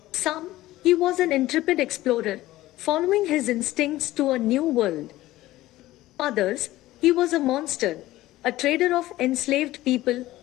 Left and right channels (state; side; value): quieter; right; 16.4 dB